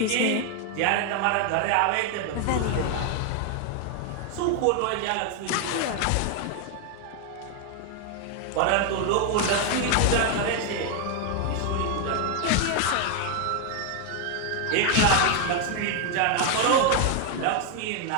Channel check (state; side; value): different; both; correlation 0.00